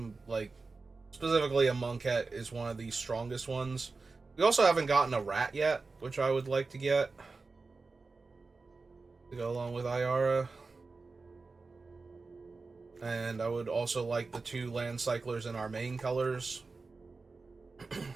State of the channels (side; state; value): left; quieter; 4.0 dB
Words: like, specifically a Monkette is one of the strongest ones. We also haven't gotten a Rat yet, which I would like to get. To go along with Ayara. And I would also like the 2 land cyclers in our main colors. Have